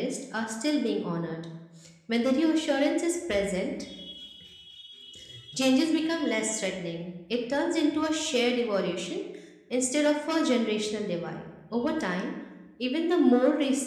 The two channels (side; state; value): both; identical; correlation 1.00